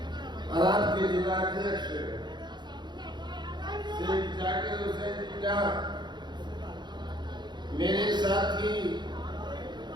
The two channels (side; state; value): left; late; 0.21 ms